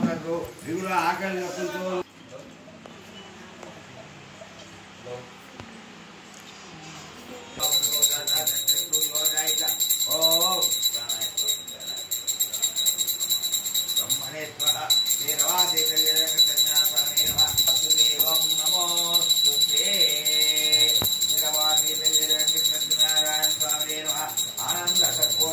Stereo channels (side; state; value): both; identical; correlation 1.00